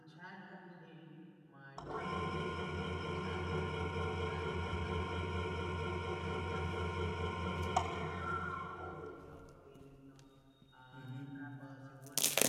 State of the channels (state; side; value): identical; both; correlation 1.00